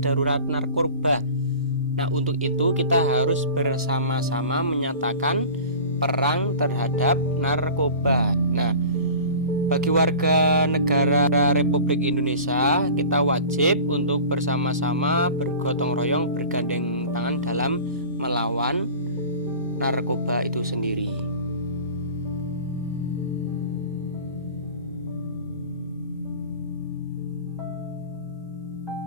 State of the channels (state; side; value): inverted; both; correlation -0.39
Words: narkoba. Nah, untuk itu kita harus bersama-sama menyatakan perang terhadap narkoba. Nah, bagi warga negara Republik Indonesia, kita wajib untuk bersama-sama bergotong royong, bergandeng tangan dalam melawan narkoba itu sendiri.